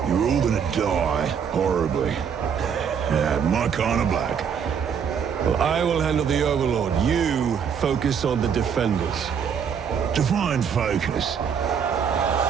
you're all gonna die horribly. My kind of black. Well, I will handle the Overlord. You focus on the defenders. Define focus.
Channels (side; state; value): left; quieter; 7.2 dB